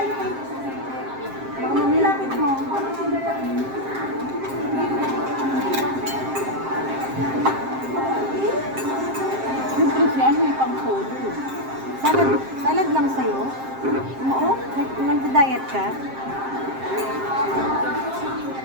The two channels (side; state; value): left; late; 7.6 ms